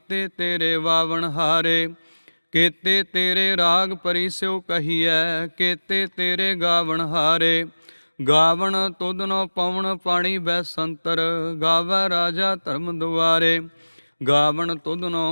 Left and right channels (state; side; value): inverted; both; correlation -1.00